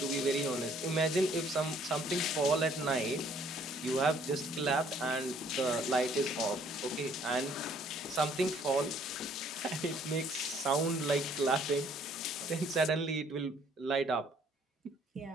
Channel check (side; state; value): both; normal; correlation 0.62